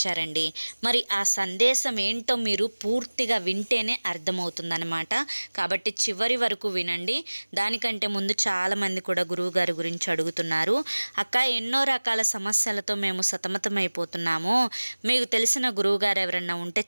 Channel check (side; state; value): both; inverted; correlation -1.00